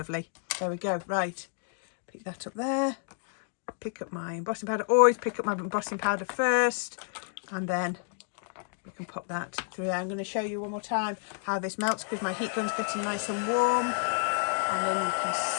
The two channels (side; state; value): right; silent; digital silence